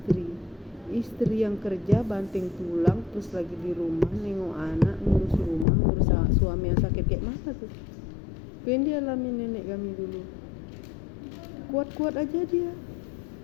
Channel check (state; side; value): drops out; right; at 5.7 s